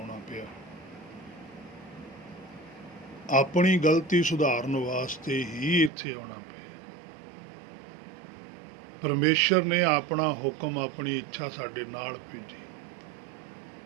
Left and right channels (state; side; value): drops out; left; at 5.9 s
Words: ਪਿਆ। ਆਪਣੀ ਗਲਤੀ ਸੁਧਾਰਨ ਵਾਸਤੇ ਹੀ ਇੱਥੇ ਆਉਣਾ ਪਿਆ। ਪਰਮੇਸ਼ਰ ਨੇ ਆਪਣਾ ਹੁਕਮ, ਆਪਣੀ ਇੱਛਾ ਸਾਡੇ ਨਾਲ ਭੇਜੀ।